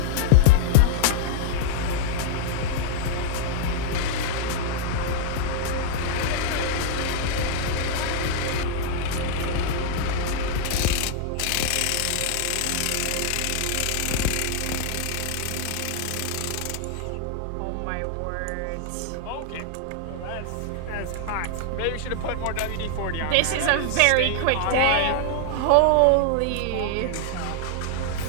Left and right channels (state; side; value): different; both; correlation -0.01